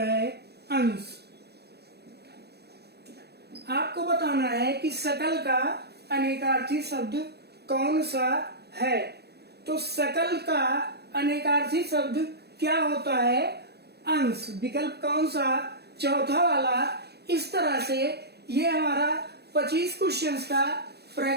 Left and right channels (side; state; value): left; late; 0.47 ms